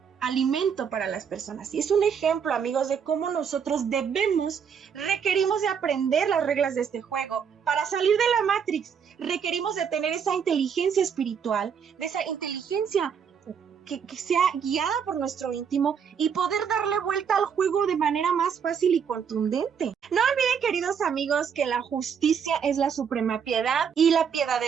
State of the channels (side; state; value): left; quieter; 7.2 dB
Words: alimento para las personas. Y es un ejemplo, amigos, de cómo nosotros requerimos de aprender las reglas de este juego. Para salir de la Matrix, requerimos de tener esa inteligencia espiritual, de esa inteligencia que sea guiada por nuestro íntimo y poder darle vuelta al juego de manera más fácil y contundente. No olviden, queridos amigos, que la justicia es la suprema piedad y la piedad